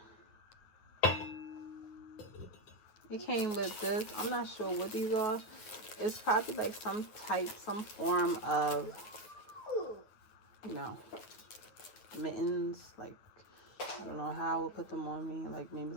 It came with this. I'm not sure what these are. It's probably like some form of, you know, mittens. Like, I don't know how I would put them on me. Like, maybe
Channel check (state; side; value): late; right; 9.3 ms